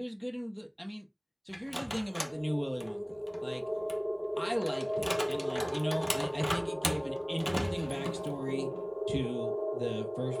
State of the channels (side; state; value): both; identical; correlation 1.00